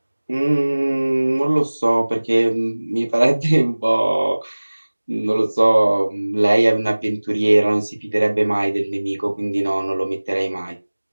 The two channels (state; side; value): inverted; both; correlation -1.00